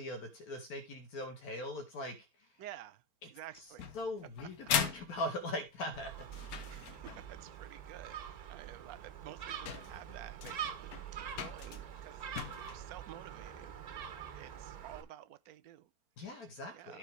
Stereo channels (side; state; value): right; late; 4.4 ms